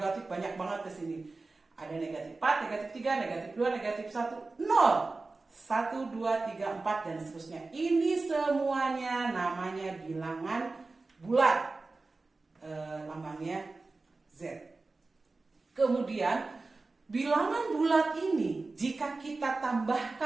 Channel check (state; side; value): quieter; left; 3.6 dB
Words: banyak banget di sini. Ada negatif 4, negatif 3, negatif 2, negatif 1, 0. 1, 2, 3, 4 dan seterusnya. Ini semuanya namanya bilangan bulat. Lambangnya Z. Kemudian bilangan bulat ini jika kita